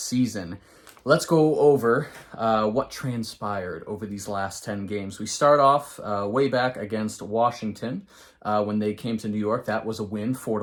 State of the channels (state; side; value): identical; both; correlation 1.00